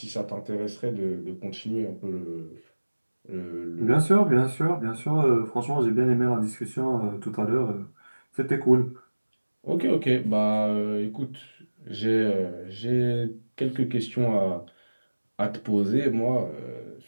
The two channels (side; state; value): both; inverted; correlation -1.00